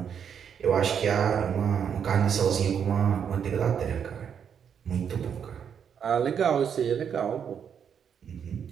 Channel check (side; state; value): left; quieter; 7.8 dB